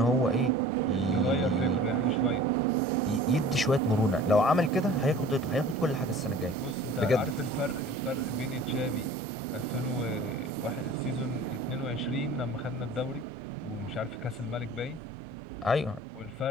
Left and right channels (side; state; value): both; normal; correlation 0.44